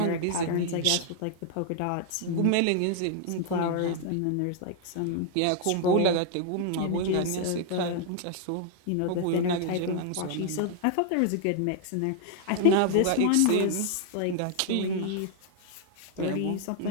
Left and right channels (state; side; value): different; both; correlation 0.00